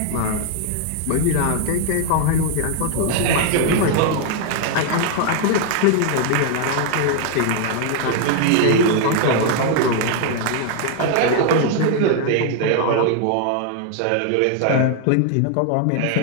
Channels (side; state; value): both; different; correlation 0.00